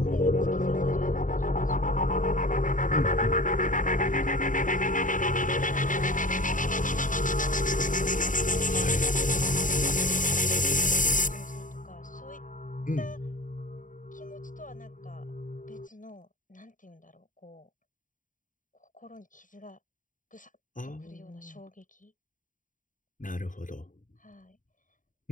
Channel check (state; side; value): late; right; 0.38 ms